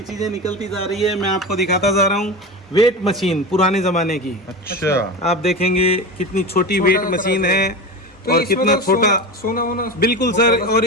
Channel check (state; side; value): normal; both; correlation 0.25